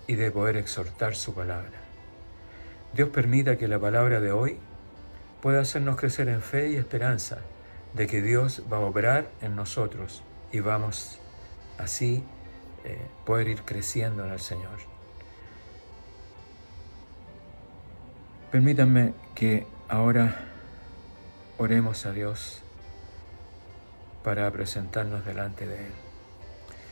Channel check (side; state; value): both; inverted; correlation -1.00